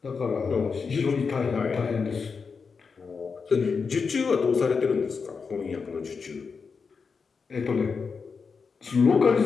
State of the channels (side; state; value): right; quieter; 5.3 dB